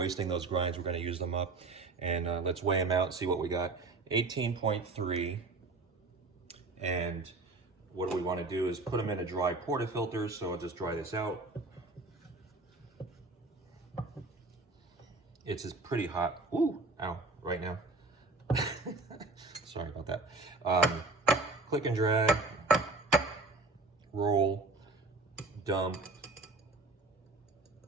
those grinds. We're gonna use them up, and let's weigh them out and see what we got. 18.3, and what do we want to do is put them in a dry portafilter. So I'll just dry this out. It's pretty hot. Ooh, ow, right now. Sorry about that. Click and drag, roll, dump.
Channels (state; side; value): quieter; left; 3.3 dB